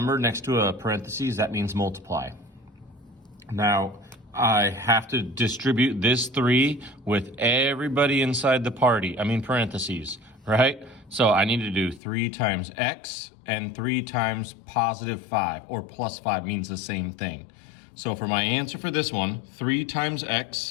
next to a parentheses, that means multiply. Now, I have to distribute this 3 with everybody inside the parentheses, right? So I need to do 3 times x and 3 times positive 5, or plus 5 means the same thing. So for my answer for this one, 3 times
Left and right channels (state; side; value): drops out; right; at 12.0 s